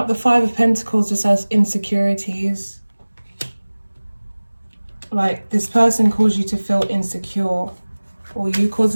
the 5 of Pentacles just as insecurities. Like this person caused you to feel insecure, or you caused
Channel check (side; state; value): both; inverted; correlation -1.00